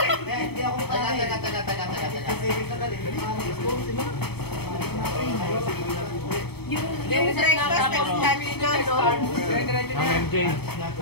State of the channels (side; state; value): right; late; 0.97 ms